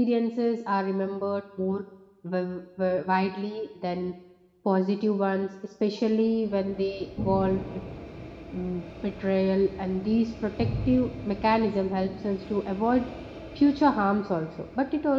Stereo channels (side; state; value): both; identical; correlation 1.00